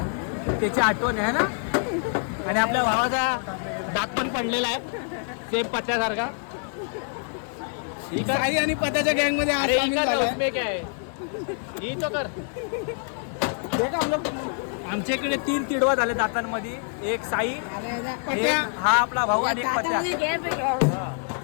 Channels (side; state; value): right; silent; 55 dB below the other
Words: त्याची आठवण आहे ना. आणि आपल्या भावाचा दात पण पडलेला आहे सेम पत्त्यासारखा. ठीक आहे. साई आणि पत्याच्या गँग मध्ये अरे उसमें क्या है ही तो कर. आमच्या इकडे 3 तिडवा झाले दातांमध्ये. एक साई एक हा आपला भाऊ आणि एक पत्या.